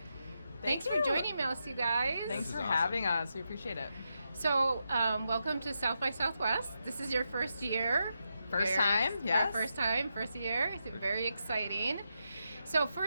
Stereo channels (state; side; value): inverted; both; correlation -0.85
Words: Thanks for joining us, you guys. Thanks for having us. We appreciate it. So, welcome to South by Southwest. This is your first year. First time, yes. First year. It's very exciting. So